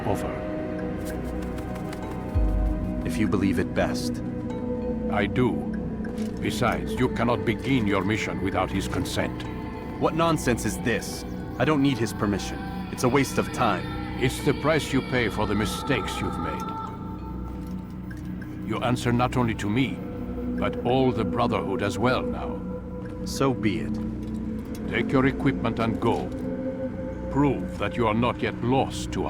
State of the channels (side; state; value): both; identical; correlation 1.00